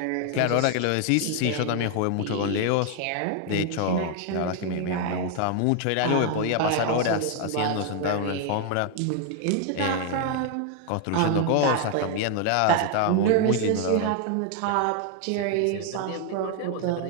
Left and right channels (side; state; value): both; different; correlation 0.00